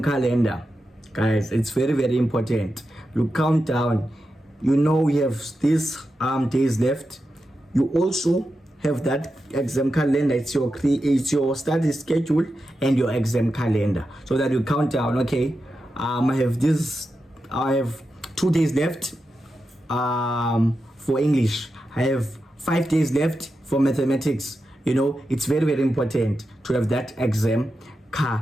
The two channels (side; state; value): both; normal; correlation 0.89